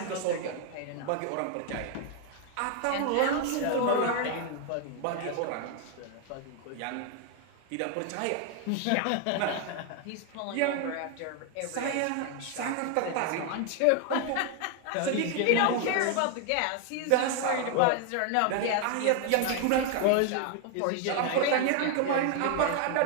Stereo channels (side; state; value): both; different; correlation 0.00